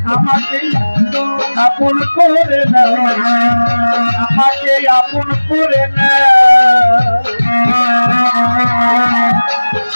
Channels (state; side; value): inverted; both; correlation -1.00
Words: আমাকে আপন করে না, আমাকে আপন করে না,